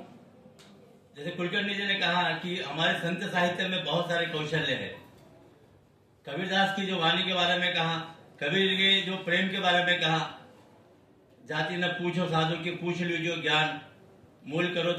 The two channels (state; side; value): identical; both; correlation 1.00